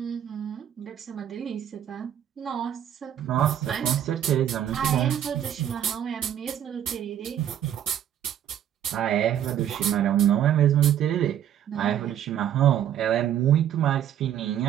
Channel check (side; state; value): left; quieter; 10.3 dB